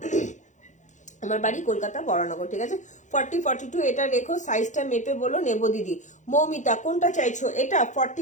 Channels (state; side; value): late; right; 0.35 ms